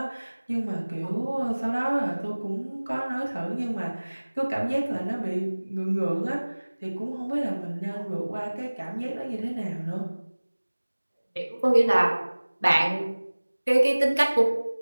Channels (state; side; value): inverted; both; correlation -1.00